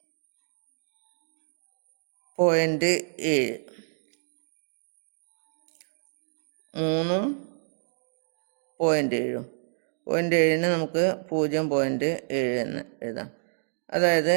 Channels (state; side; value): silent; left; digital silence